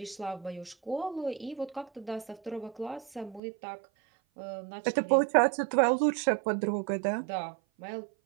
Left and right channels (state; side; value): drops out; left; at 3.4 s